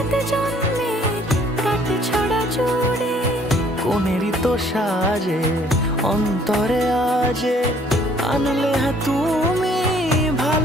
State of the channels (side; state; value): both; normal; correlation 0.60